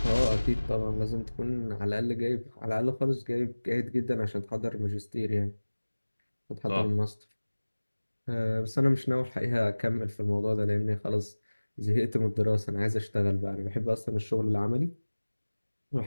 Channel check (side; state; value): both; inverted; correlation -1.00